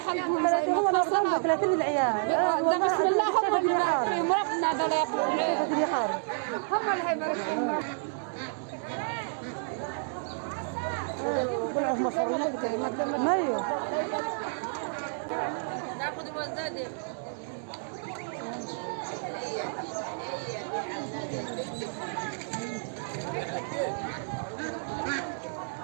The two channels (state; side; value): silent; left; digital silence